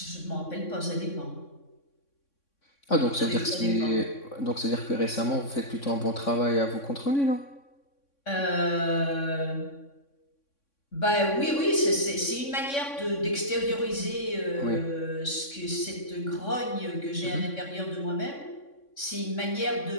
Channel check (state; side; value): late; right; 3.6 ms